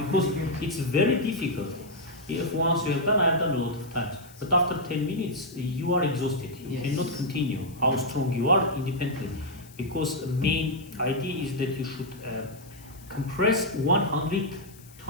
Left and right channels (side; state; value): left; noise; hiss, 23 dB below the sound